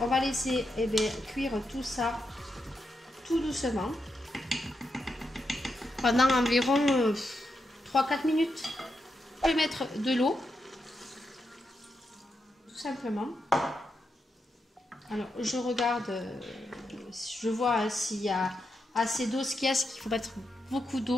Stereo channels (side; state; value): both; normal; correlation 0.84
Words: on va laisser cuire tout ça tout doucement pendant environ 3-4 minutes. Je vais mettre de l'eau, tout simplement. Alors je regarde, je vois s'il y a assez d'eau. Ce qu'il y a, c'est qu'il faut mettre beaucoup